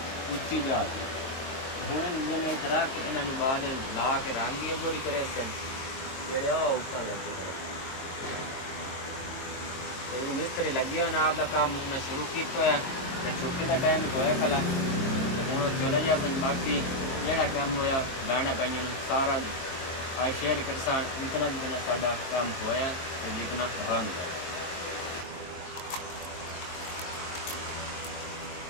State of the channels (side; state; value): right; late; 22 ms